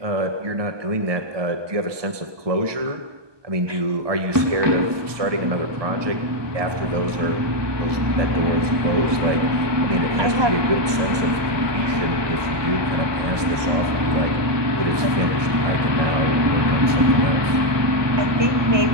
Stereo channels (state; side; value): late; left; 1.2 ms